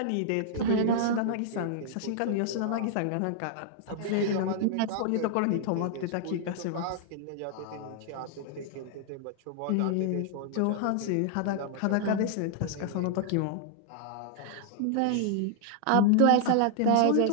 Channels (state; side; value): different; both; correlation 0.00